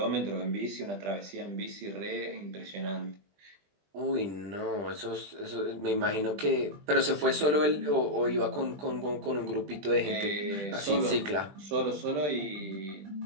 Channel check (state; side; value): late; left; 20 ms